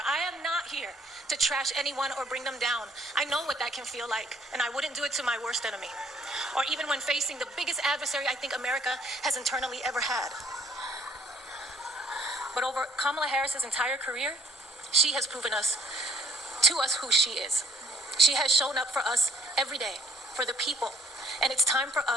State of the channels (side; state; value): both; normal; correlation 0.61